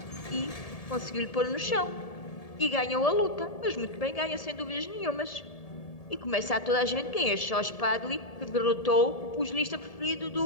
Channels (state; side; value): late; right; 1.7 ms